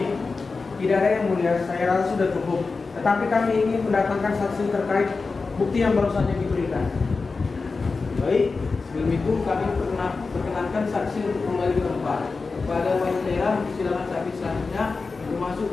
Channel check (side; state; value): right; quieter; 4.2 dB